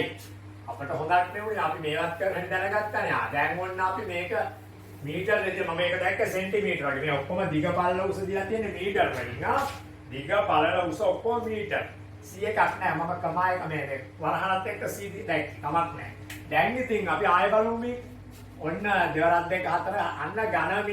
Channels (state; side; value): identical; both; correlation 1.00